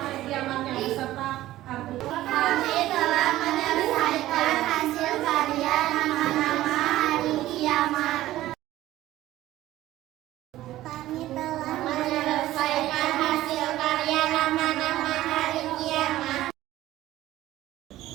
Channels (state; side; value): quieter; left; 15.1 dB